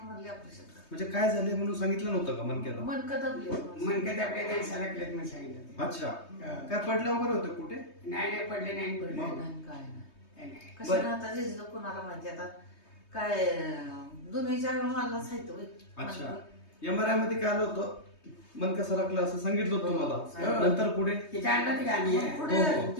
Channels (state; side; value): late; right; 3.2 ms